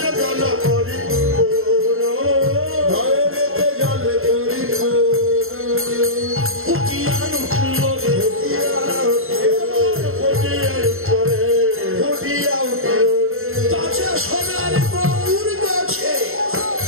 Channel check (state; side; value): late; left; 0.61 ms